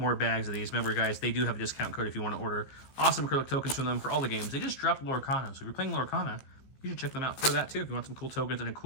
bags of these. Remember, guys, they do have a discount code if you want to order awesome acrylic tokens from them for all the games. They just dropped Lorcana. So if you're playing Lorcana, you should check them out for that too if you want some cool tokens and a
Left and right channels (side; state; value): right; late; 15 ms